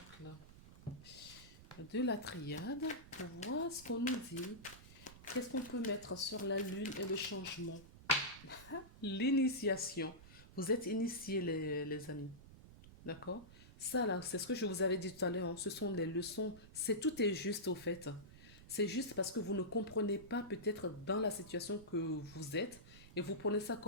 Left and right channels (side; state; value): right; noise; rumble, 18 dB below the sound